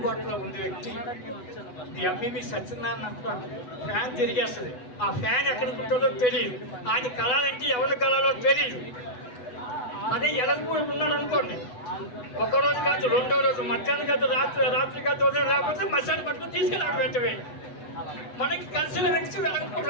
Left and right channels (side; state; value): right; late; 8.0 ms